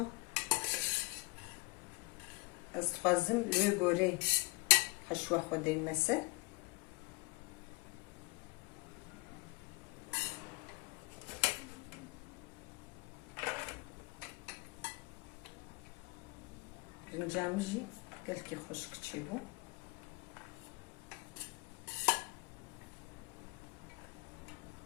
استخوازم لوی گوره حشوه خوده مسه رنجامجی قالك خشك تشيبو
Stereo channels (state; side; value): quieter; right; 25.8 dB